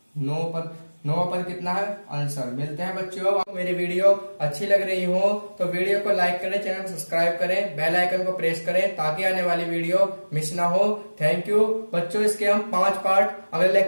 9 पद कितना है आंसर। मिलते हैं बच्चों, मेरी वीडियो अच्छी लग रही हो तो वीडियो को लाइक करें, चैनल को सब्सक्राइब करें, बेल आइकन को प्रेस करें ताकि आने वाली वीडियो मिस ना हो। थैंक यू बच्चों, इसके हम 5 पार्ट अगले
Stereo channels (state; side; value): inverted; both; correlation -1.00